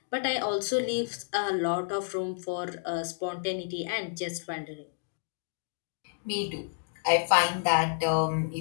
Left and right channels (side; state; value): right; silent; digital silence